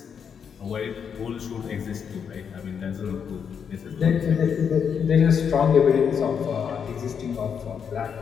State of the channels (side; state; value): right; quieter; 7.1 dB